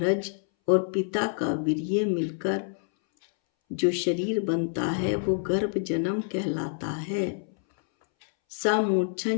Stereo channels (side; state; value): right; silent; 60 dB below the other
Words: और पिता का वीर्य मिलकर जो शरीर बनता है, वो गर्भ जन्म कहलाता है।